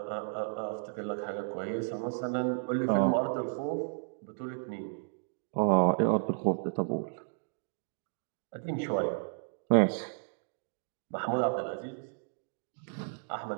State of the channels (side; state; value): left; silent; digital silence